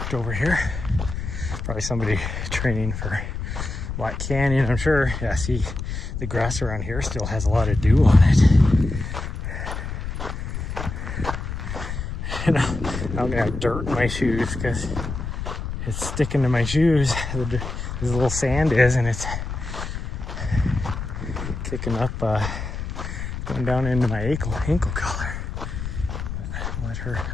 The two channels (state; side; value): noise; left; rumble, 6 dB below the sound